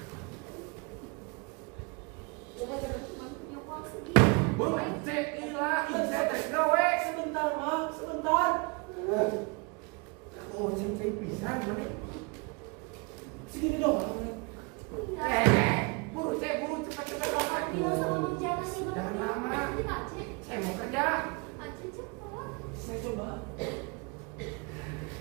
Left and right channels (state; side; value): quieter; left; 30.6 dB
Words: Cuma punya uang segini. Buru, Cek, inilah, saya tes gawe. Sebentar mak, sebentar. Oh, Cek bisa, mana? Segini dong Neng. Buru, Cek, cepat doang. Bilang sama Mang Jana Jangan lama. Kita, Aceh. Saya mau kerja. Aceh cepat. Saya coba.